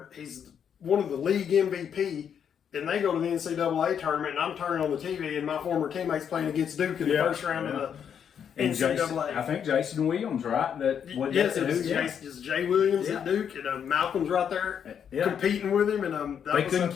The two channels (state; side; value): quieter; right; 8.1 dB